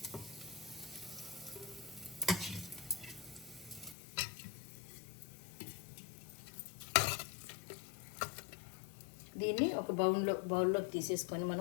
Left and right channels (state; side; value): drops out; right; at 4.0 s